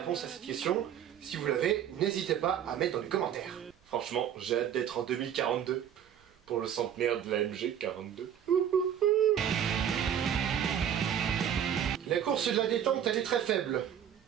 à cette question. Si vous l'avez, n'hésitez pas à mettre dans les commentaires. Franchement, j'ai hâte d'être en 2042 pour le centenaire de la MG42. La course de la détente, elle est très faible.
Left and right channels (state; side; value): quieter; left; 9.3 dB